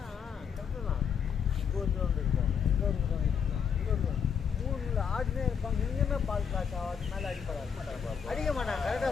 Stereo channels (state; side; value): quieter; right; 7.1 dB